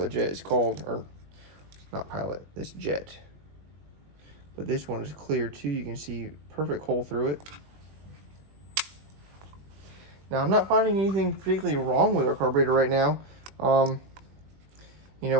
jet is called, or not pilot, this jet. But this one is clear too. You can see perfect hole through it. Now, I'm not finding anything particularly wrong with our carburetor right now. You know,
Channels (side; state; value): left; late; 20 ms